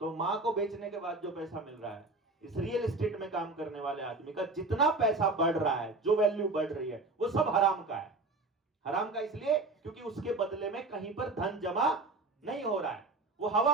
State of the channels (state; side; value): quieter; left; 3.3 dB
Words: मां को बेचने के बाद जो पैसा मिल रहा है, इस रियल एस्टेट में काम करने वाले आदमी का जितना पैसा बढ़ रहा है, जो वैल्यू बढ़ रही है, वो सब हराम का है। हराम का इसलिए क्योंकि उसके बदले में कहीं पर धन जमा नहीं हो रहा है, वो